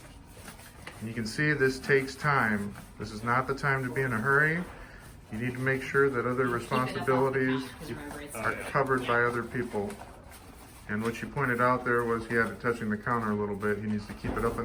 You can see this takes time. This is not the time to be in a hurry. You need to make sure that other responsibilities are covered by other people. And what you pointed out there was he had it touching the counter a little bit. He needs to keep it up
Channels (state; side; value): identical; both; correlation 1.00